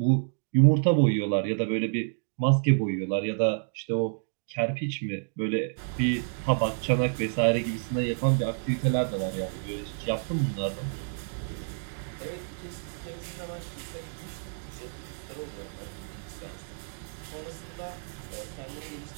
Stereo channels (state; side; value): silent; left; digital silence